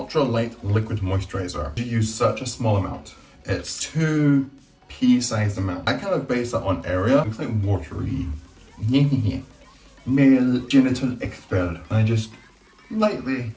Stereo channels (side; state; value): both; identical; correlation 1.00